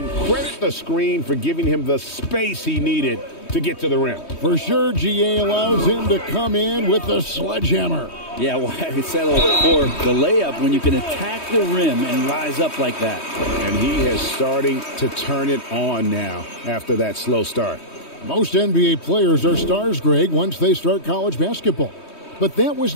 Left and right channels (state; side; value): late; right; 3.2 ms